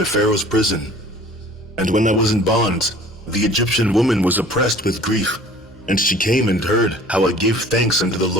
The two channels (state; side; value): normal; both; correlation 0.49